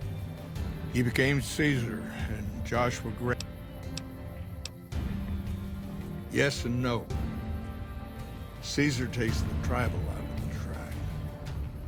He became Caesar and Joshua Gray. Yes and no. Caesar takes the tribal out of the tribe.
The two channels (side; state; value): both; identical; correlation 1.00